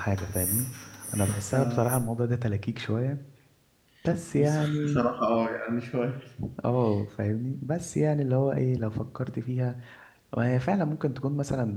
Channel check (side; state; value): both; identical; correlation 1.00